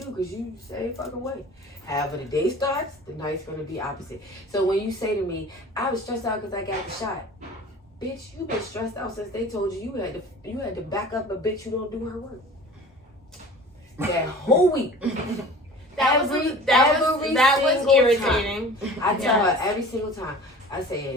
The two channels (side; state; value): both; normal; correlation 0.42